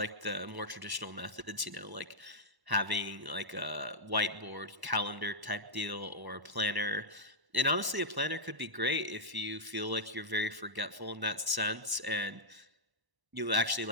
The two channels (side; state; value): left; late; 1.0 ms